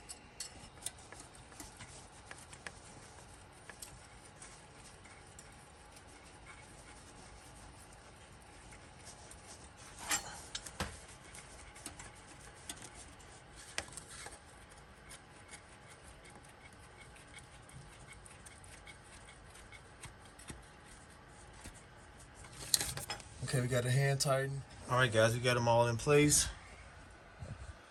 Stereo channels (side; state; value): both; identical; correlation 1.00